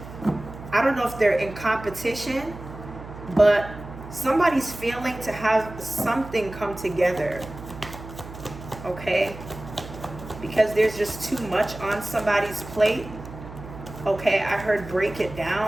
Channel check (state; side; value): noise; right; hum, 14 dB below the sound